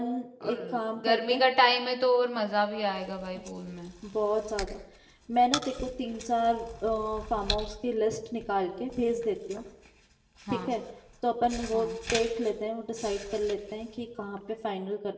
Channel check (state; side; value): identical; both; correlation 1.00